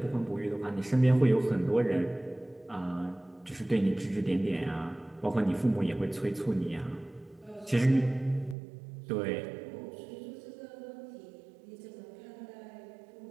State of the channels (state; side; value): drops out; left; at 8.6 s